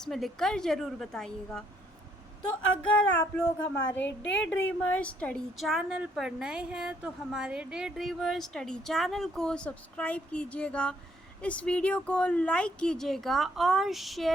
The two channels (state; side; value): normal; both; correlation 0.69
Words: में लिखकर ज़रूर बताइएगा। तो अगर आप लोग हमारे डे ड्रीमर स्टडी चैनल पर नए हैं तो हमारे डे ड्रीमर स्टडी चैनल को सब्सक्राइब कीजिएगा, इस वीडियो को लाइक कीजिएगा और